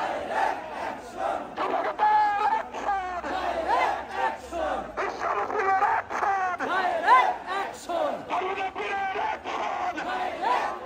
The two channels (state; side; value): identical; both; correlation 1.00